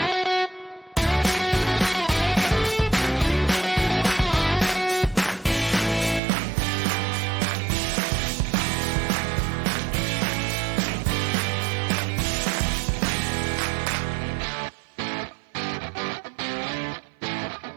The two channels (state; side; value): drops out; left; at 6.2 s